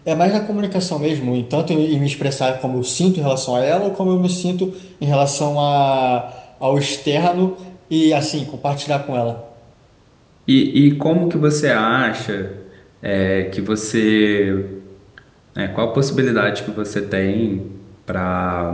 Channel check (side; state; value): both; identical; correlation 1.00